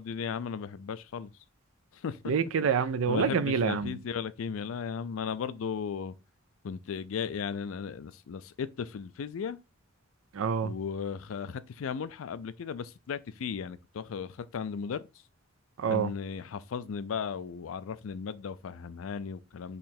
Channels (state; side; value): normal; both; correlation 0.00